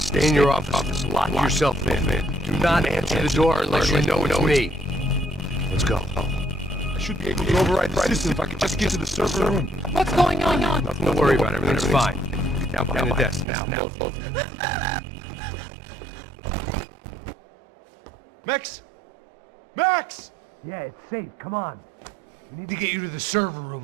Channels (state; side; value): drops out; left; at 13.5 s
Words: in your office. Lock yourself in. Do not answer the door unless you know it's me. Let's go. I should be able to override the system if I could just get to the server room. What's going on? Nothing to worry about. Everything's fine. Down behind the desk now. Max! Max! Yeah, it's safe. Come on. We need to get you to the server